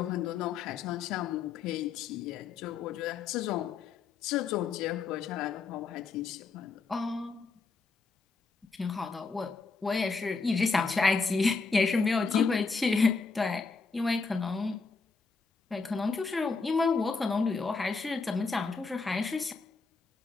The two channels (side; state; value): right; quieter; 4.5 dB